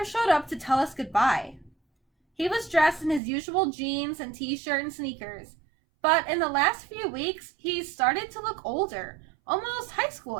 showed up to tell us goodbye. He was dressed in his usual jeans and t-shirt and sneakers, but in the last few weeks, he started to look older, almost high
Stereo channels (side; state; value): left; drops out; at 3.2 s